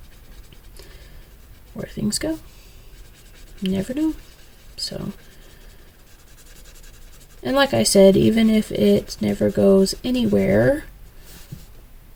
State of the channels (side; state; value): both; identical; correlation 1.00